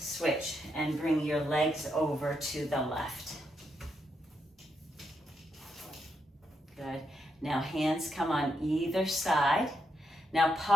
and bring your legs over to the left. Good. Now hands come on either side. Now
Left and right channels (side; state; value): both; normal; correlation 0.81